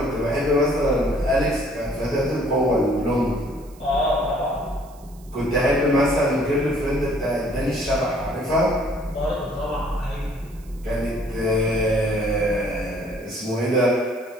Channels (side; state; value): right; noise; hiss, 27 dB below the sound